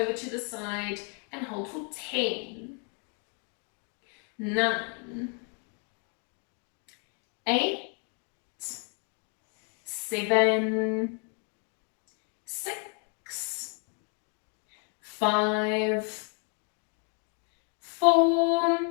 to the side, and hold for 10, 9, 8, 7, 6, 5, 4,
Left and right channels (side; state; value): right; quieter; 39.9 dB